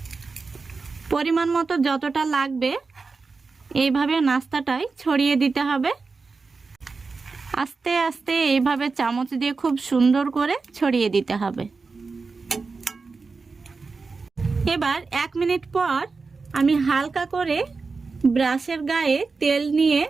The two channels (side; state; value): left; quieter; 4.3 dB